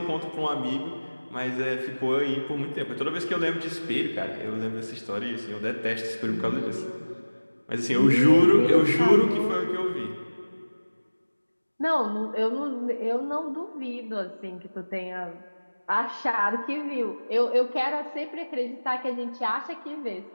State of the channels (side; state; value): both; inverted; correlation -1.00